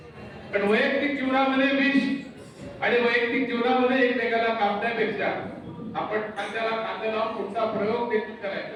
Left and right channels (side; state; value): both; identical; correlation 1.00